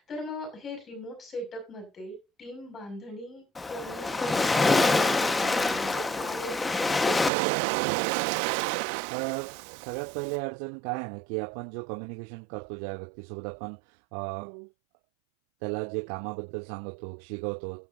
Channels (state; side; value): drops out; left; at 7.3 s